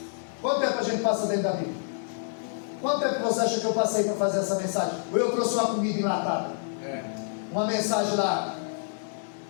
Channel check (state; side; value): silent; right; digital silence